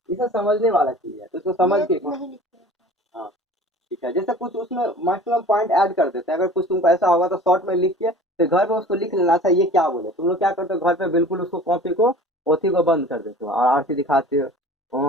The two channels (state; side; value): normal; both; correlation 0.43